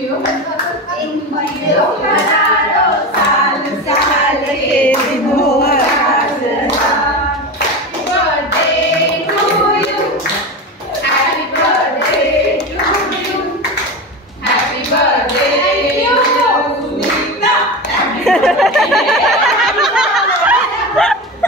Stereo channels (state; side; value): normal; both; correlation 0.23